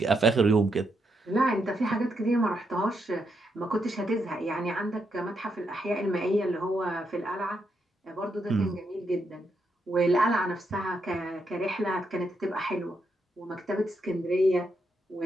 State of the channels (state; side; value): normal; both; correlation 0.81